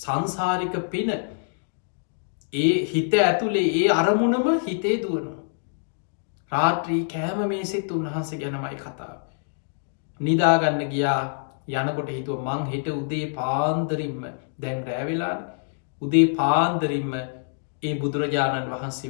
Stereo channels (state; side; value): silent; right; digital silence